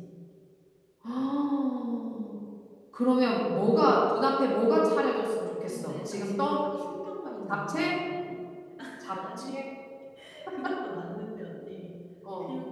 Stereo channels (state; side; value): identical; both; correlation 1.00